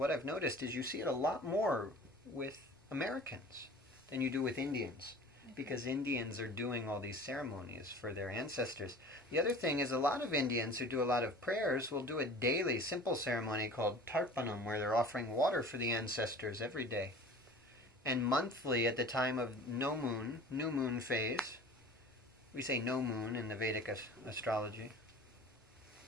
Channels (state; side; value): normal; both; correlation 0.42